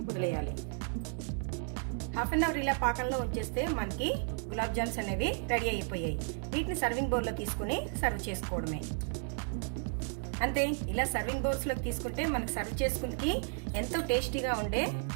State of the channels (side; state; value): left; silent; 55 dB below the other